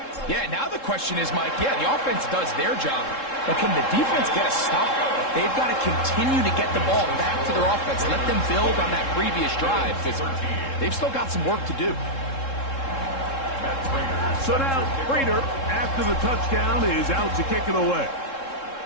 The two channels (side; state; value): right; late; 3.7 ms